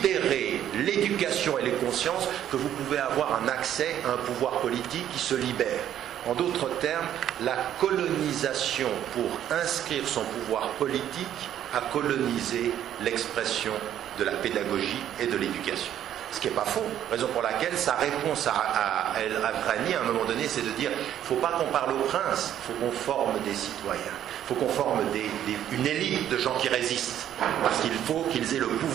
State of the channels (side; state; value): left; quieter; 10.9 dB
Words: l'éducation et les consciences que vous pouvez avoir un accès à un pouvoir politique qui se libère. En d'autres termes, la colonisation pour inscrire son pouvoir politique a colonisé l'expression de la pédagogie et de l'éducation. Ce qui n'est pas faux, raison pour laquelle sa réponse à El-Avrani à un moment donné, c'est de dire, il ne faut pas qu'on parle au prince, il faut qu'on forme des citoyens, il faut qu'on forme une élite de gens qui résistent, parce qu'il faut qu'ils aient le